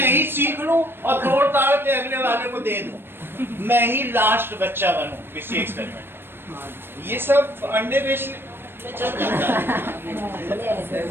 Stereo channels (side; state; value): left; late; 0.10 ms